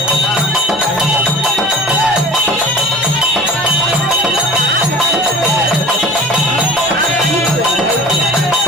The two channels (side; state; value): both; normal; correlation 0.42